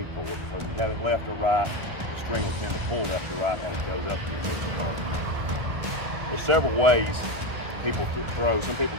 for, because if you have it left or right, the string will tend to pull left or right as it goes up to your missile target. There's several ways people throw. Some people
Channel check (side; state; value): left; late; 1.4 ms